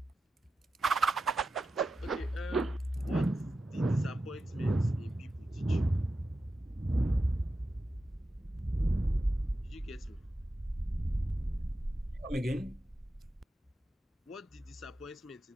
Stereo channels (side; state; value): both; normal; correlation 0.91